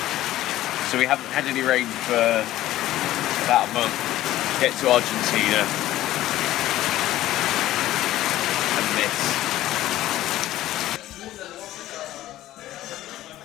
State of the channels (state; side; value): quieter; right; 14.6 dB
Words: So we haven't had any rain for about a month. Get to Argentina and miss.